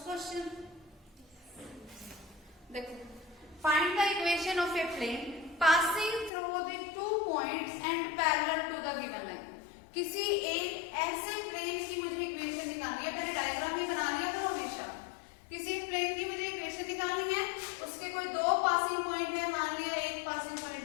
क्वेश्चन। देखो, find the equation of a plane passing through the 2 points and parallel to the given line. किसी एक ऐसे प्लेन की मुझे इक्वेशन निकालनी है, मैंने डायग्राम ही बना लिया था हमेशा। किसी प्लेन की मुझे इक्वेशन निकालनी है, उसके कोई 2 पासिंग पॉइंट है, मान लिया एक पासिंग पॉइंट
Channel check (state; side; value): drops out; right; at 6.3 s